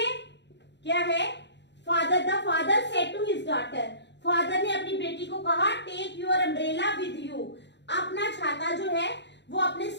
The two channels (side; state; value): right; late; 0.51 ms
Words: क्या है? The father said to his daughter, father ने अपनी बेटी को कहा take your umbrella with you, अपना छाता जो है वो अपने